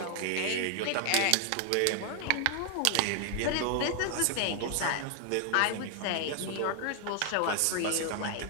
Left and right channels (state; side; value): different; both; correlation 0.00